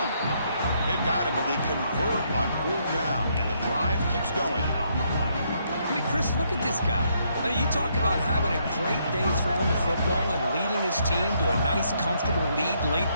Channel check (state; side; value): inverted; both; correlation -0.73